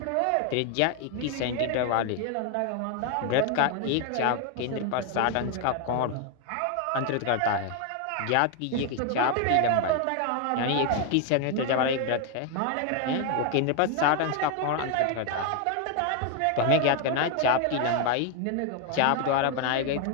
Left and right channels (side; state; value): both; different; correlation 0.01